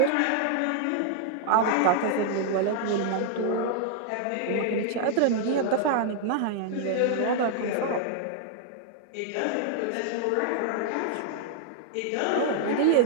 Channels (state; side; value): different; both; correlation -0.01